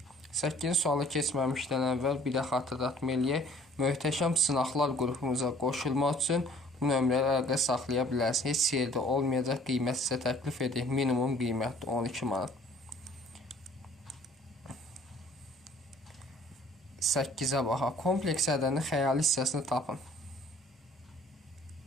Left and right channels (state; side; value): normal; both; correlation 0.54